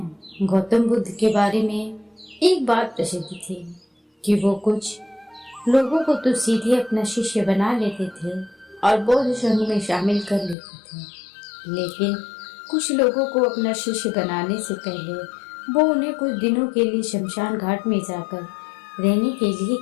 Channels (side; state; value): right; drops out; at 10.6 s